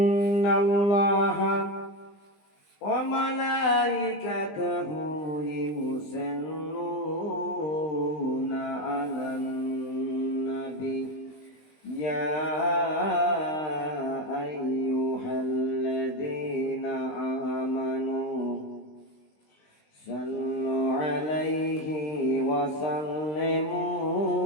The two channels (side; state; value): right; late; 20 ms